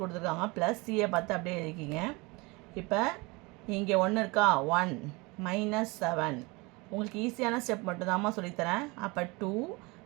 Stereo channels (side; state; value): left; quieter; 25.9 dB